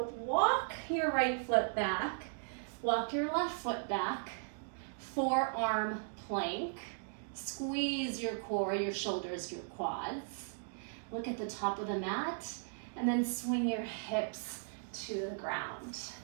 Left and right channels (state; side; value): silent; left; digital silence